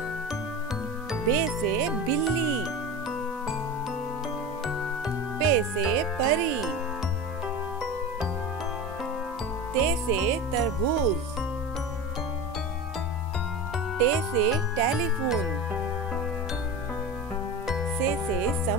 बे से बिल्ली, पे से परी, ते से तरबूज, टे से टेलीफोन, से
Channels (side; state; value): both; normal; correlation 0.28